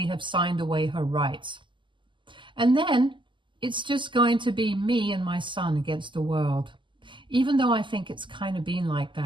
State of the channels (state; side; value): late; left; 0.24 ms